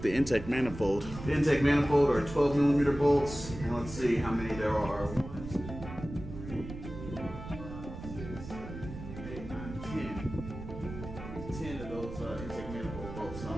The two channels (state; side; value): noise; right; rumble, 11 dB below the sound